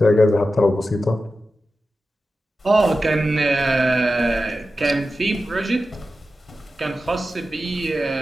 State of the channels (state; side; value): normal; both; correlation 0.92